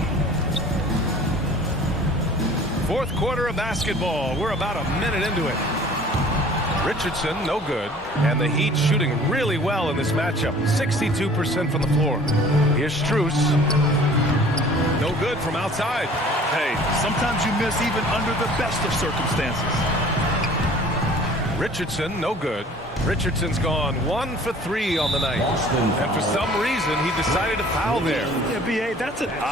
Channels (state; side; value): normal; both; correlation 0.49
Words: Fourth quarter of basketball. We're about a minute into it. Richardson, no good. And the Heat shooting really well in this matchup. 62% from the floor. Here's Strus. No good from outside. Hey, sometimes you miss even under the best of circumstances. Richardson, no good. Richardson's gone 1 for 3 on the night. And for some reason, he decided to foul there. Yeah, B.A., that's an